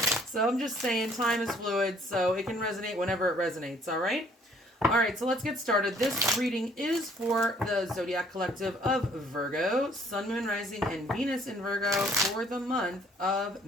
So I'm just saying time is fluid, so it can resonate whenever it resonates, all right? All right, so let's get started. This reading is for the Zodiac Collective of Virgo, Sun, Moon, Rising, and Venus in Virgo for the month of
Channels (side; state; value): both; normal; correlation 0.60